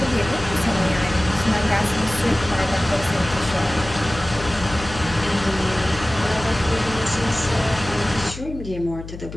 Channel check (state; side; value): noise; left; hum, 12 dB below the sound